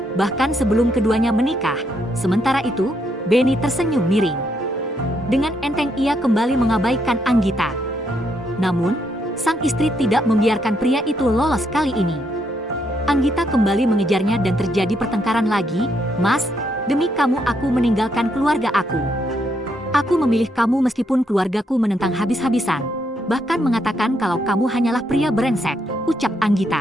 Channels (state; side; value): normal; both; correlation 0.76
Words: Bahkan sebelum keduanya menikah, sementara itu, Benny tersenyum miring. Dengan enteng ia kembali mengabaikan Anggita. Namun, sang istri tidak membiarkan pria itu lolos kali ini. Anggita kembali mengejarnya dan terjadi pertengkaran lagi. Mas, Demi kamu aku meninggalkan keluarga aku. Aku memilih kamu meskipun keluargaku menentang habis-habisan. Bahkan mengatakan kalau kamu hanyalah pria brengsek, ucap